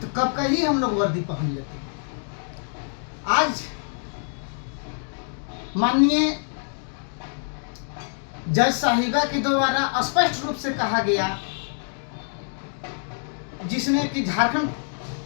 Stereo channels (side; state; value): right; silent; 60 dB below the other